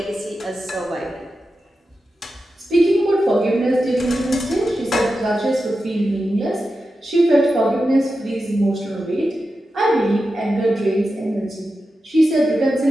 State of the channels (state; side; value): normal; both; correlation 0.91